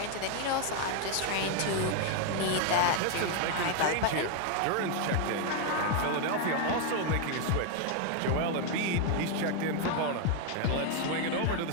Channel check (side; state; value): both; different; correlation 0.01